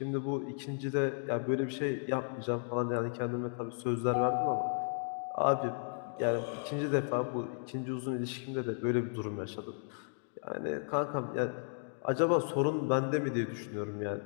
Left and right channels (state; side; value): silent; right; 55 dB below the other